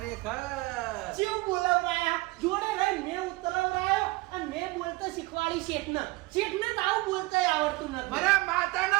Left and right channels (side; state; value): left; quieter; 22.4 dB